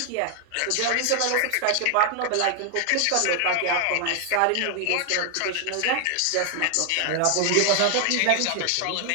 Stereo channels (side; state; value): both; different; correlation 0.00